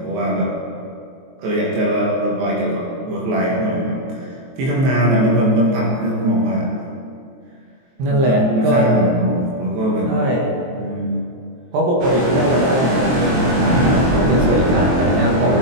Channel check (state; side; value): late; left; 23 ms